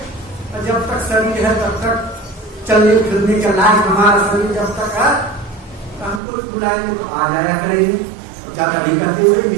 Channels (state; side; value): drops out; left; at 6.2 s